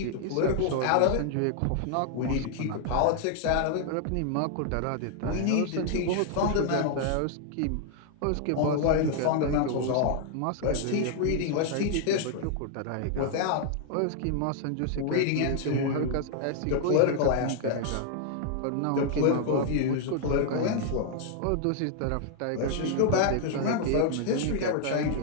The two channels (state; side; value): different; both; correlation 0.00